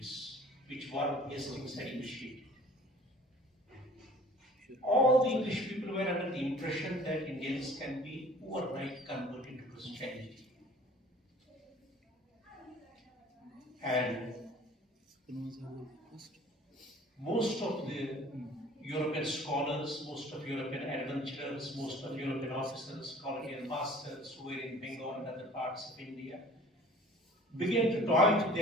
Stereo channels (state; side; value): normal; both; correlation 0.49